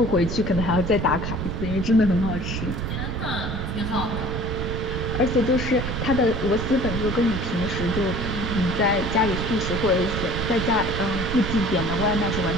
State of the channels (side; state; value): right; noise; rumble, 3 dB below the sound